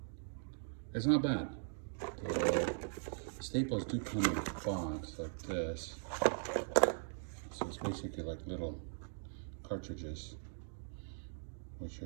It's not bad. The staples do come in a box like this. So it's basically like little cartridges, which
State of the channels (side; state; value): left; silent; digital silence